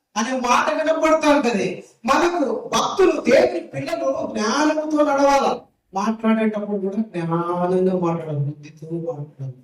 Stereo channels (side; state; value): both; identical; correlation 1.00